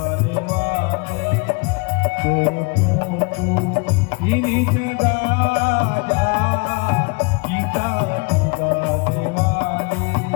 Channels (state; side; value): quieter; right; 30.7 dB